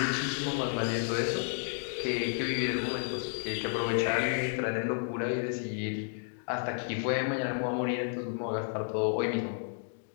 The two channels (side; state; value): right; silent; digital silence